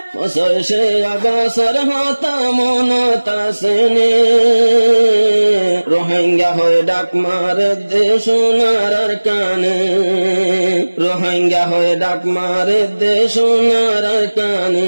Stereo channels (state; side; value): inverted; both; correlation -1.00